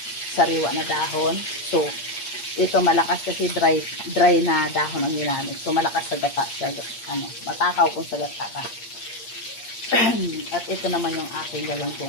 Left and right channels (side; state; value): right; late; 8.6 ms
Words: sariwa na dahon. So, ito malakas kasi dry na dahon ang ginamit. So, malakas sa gata siya. Matakaw kung sa gata ka. At ito naman yung aking